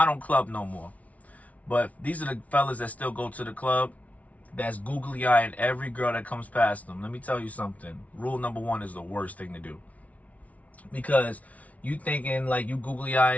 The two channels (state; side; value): late; right; 0.068 ms